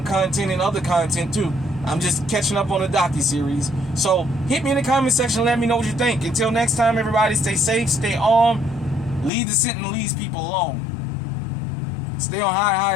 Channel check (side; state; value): right; drops out; at 9.3 s